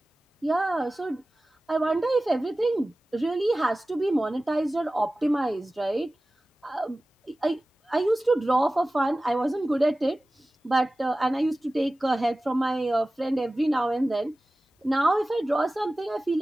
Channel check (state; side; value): normal; both; correlation 0.97